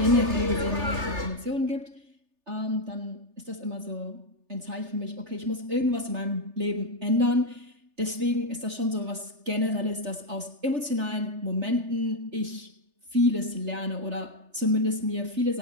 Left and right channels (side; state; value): left; late; 3.3 ms